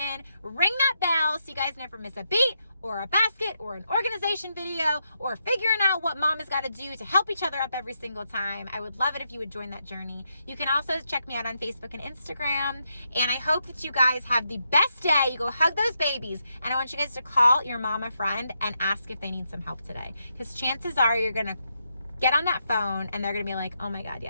ring that bell so you guys never miss a beat or a basket or an organization video or figuring out what mom has got to do to help each other up every single time. I would love it if you would join that journey. You can also check me out on Facebook and Instagram. And I hope that you guys have the best day. You go hug those babies. And I want you guys to call your mama friend and ask if they need some help today. Because chances are you're going to get on that phone and they're going to be like, oh my God,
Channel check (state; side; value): inverted; both; correlation -0.81